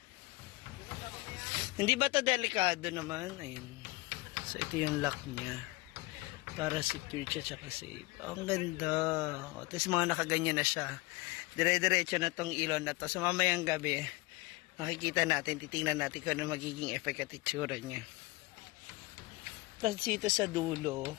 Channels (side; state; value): right; quieter; 22.9 dB